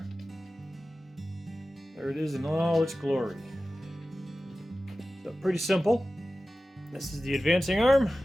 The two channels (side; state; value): both; normal; correlation 0.95